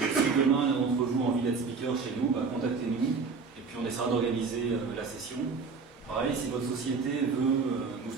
demain l'un d'entre vous a envie d'être speaker chez nous, contactez-nous et puis on essaiera d'organiser la session. Pareil, si votre société veut nous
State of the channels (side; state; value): left; quieter; 4.8 dB